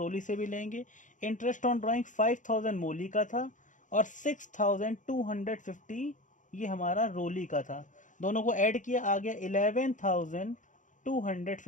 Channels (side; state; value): right; late; 0.37 ms